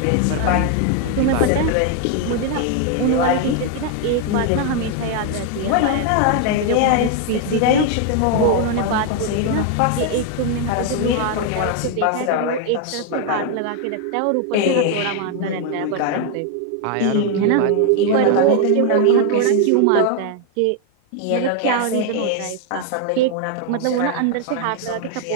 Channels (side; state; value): both; different; correlation 0.01